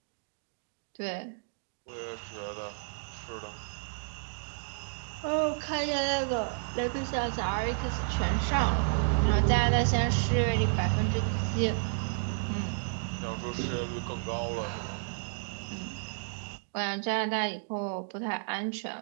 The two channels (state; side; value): silent; left; digital silence